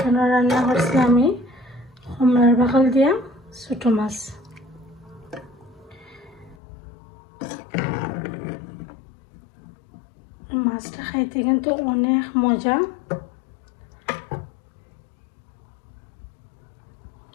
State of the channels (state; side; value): drops out; right; at 6.6 s